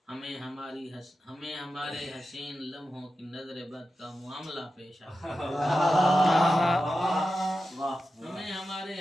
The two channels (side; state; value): both; normal; correlation 0.92